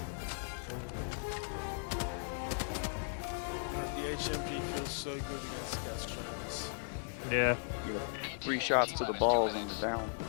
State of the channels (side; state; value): right; silent; 53 dB below the other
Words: so good against Gas Trainers. Yeah. You know, 3 shots to the balls and you're down.